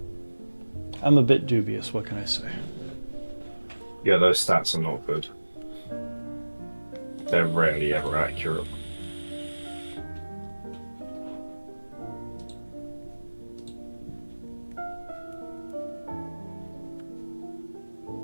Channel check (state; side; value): inverted; both; correlation -1.00